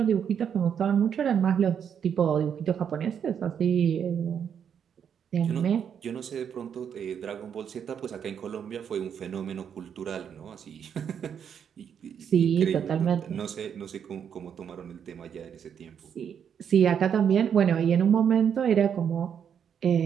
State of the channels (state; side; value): quieter; left; 8.0 dB